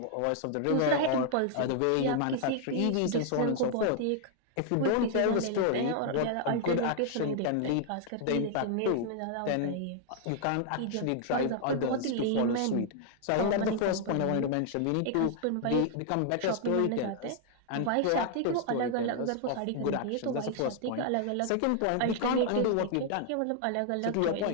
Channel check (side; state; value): both; different; correlation 0.00